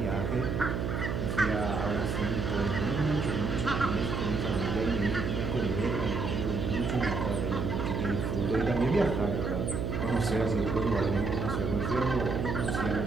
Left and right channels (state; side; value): noise; right; hum, 1 dB below the sound